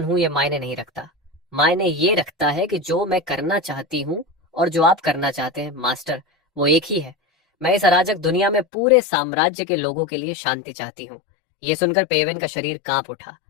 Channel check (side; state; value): right; drops out; at 8.7 s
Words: हूं ये मायने नहीं रखता, मायने ये रखता है कि जो मैं करना चाहती हूं और जो आप करना चाहते हैं मास्टर, वो एक ही है। मैं इस अराजक दुनिया में पूरे साम्राज्य के लोगों के लिए शांति चाहती हूँ। ये सुनकर पेवेन का शरीर कांप उठा